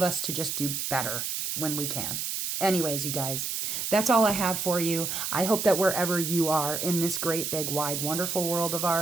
us to just do better when we can. Anyways, you guys, that's all I have for you. I hope that wherever you are in this great, big, wide, wonderful world of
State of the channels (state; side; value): noise; right; hiss, 2 dB below the sound